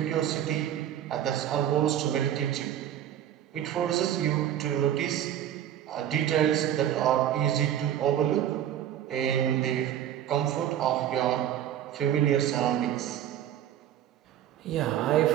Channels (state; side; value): quieter; left; 10.9 dB